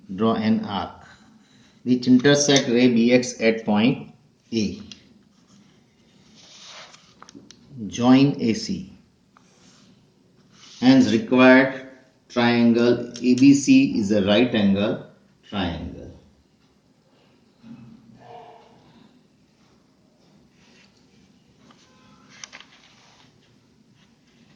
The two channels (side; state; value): both; identical; correlation 1.00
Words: draw an arc which intersect ray BX at point A. Join AC. Hence required triangle ABC is a right angle triangle.